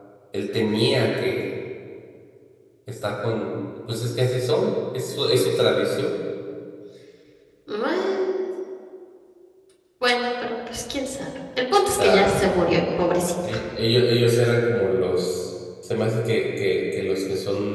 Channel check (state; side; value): identical; both; correlation 1.00